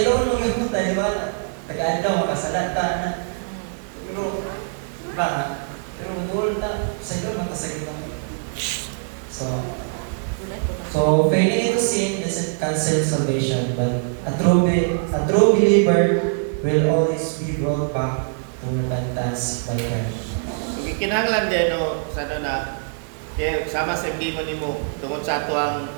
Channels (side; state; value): left; silent; digital silence